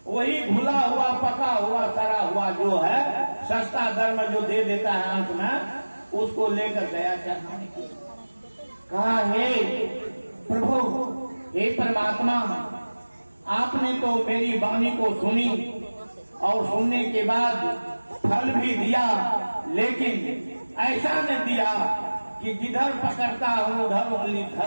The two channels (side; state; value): both; inverted; correlation -1.00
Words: वही घुला हुआ पका हुआ सड़ा हुआ जो है सस्ता दर में जो दे देता है अंत में, उसको लेकर गया चढ़ाने के। कहा हे प्रभु, हे परमात्मा, आपने तो मेरी वाणी को सुनी और सुनने के बाद फल भी दिया, लेकिन ऐसा न दिया कि जिधर पकड़ता हूं उधर उंगली